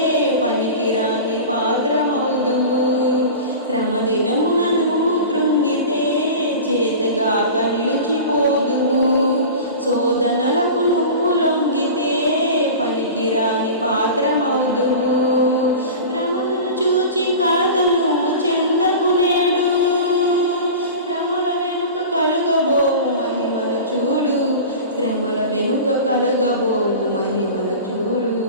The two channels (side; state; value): both; inverted; correlation -0.33